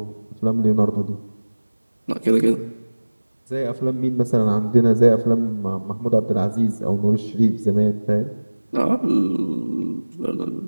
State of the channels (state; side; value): inverted; both; correlation -1.00